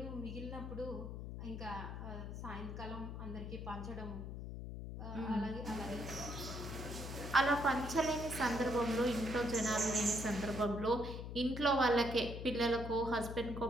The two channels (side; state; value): left; noise; hum, 7 dB below the sound